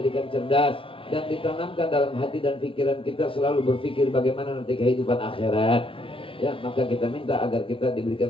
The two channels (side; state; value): right; late; 0.26 ms